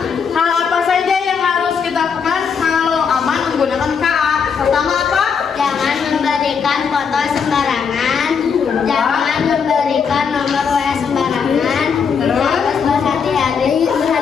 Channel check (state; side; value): quieter; right; 6.3 dB